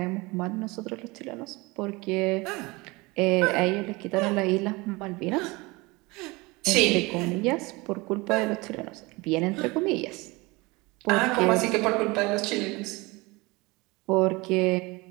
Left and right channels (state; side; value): quieter; left; 24.0 dB